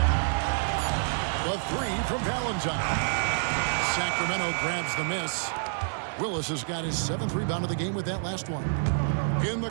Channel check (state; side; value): silent; left; 59 dB below the other